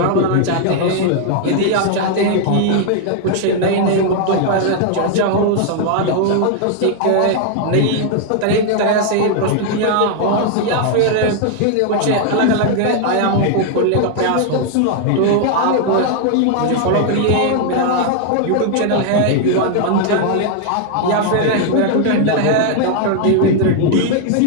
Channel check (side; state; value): both; different; correlation 0.00